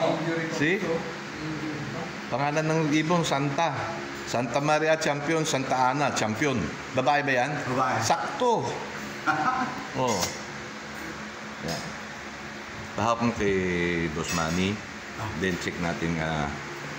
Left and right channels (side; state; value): both; identical; correlation 1.00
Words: See? Pangalan ng ibon Santa. Santa Maria champion, Santa Ana champion. Babae ba yan? Babae. Sakto. Oh. Yan. Bahawak mo kay Boss Manny. Then check natin